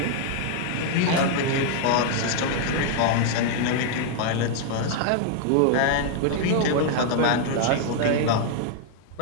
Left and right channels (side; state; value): both; different; correlation 0.00